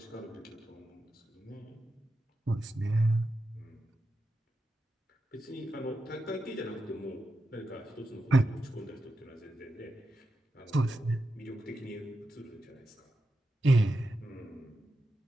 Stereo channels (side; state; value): both; normal; correlation 0.89